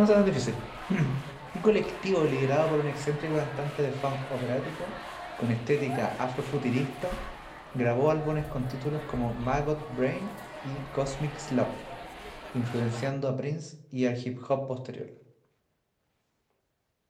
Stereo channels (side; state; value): both; identical; correlation 1.00